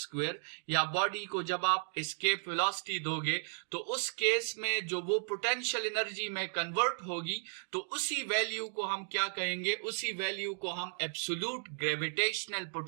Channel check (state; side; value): silent; left; digital silence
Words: या बॉडी को जब आप एस्केप वेलोसिटी दोगे तो उस केस में जो वो पोटेंशियल एनर्जी में कन्वर्ट होगी तो उसी वैल्यू को हम क्या कहेंगे, उसी वैल्यू को हम एब्सोल्यूट ग्रेविटेशनल